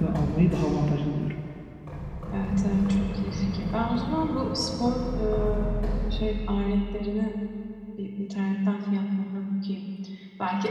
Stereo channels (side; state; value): both; identical; correlation 1.00